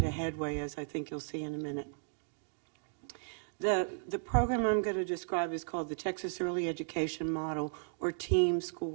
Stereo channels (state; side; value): silent; left; digital silence